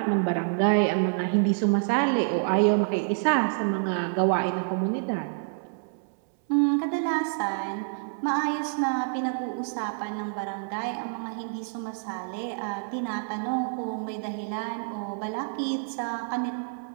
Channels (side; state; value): left; silent; 60 dB below the other